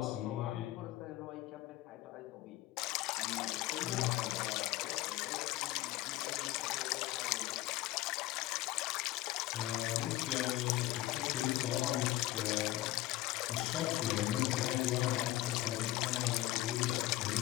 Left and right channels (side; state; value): right; quieter; 16.8 dB